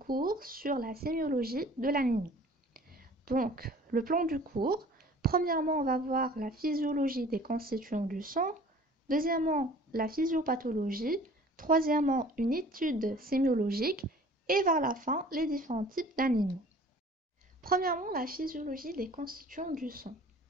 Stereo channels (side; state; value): both; normal; correlation 0.48